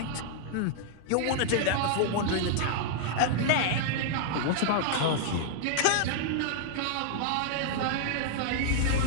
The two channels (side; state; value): both; different; correlation -0.01